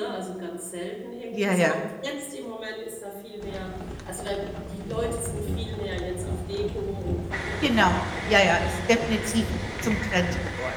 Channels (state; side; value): identical; both; correlation 1.00